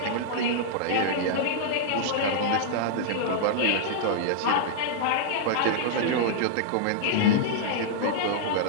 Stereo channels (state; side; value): different; both; correlation -0.01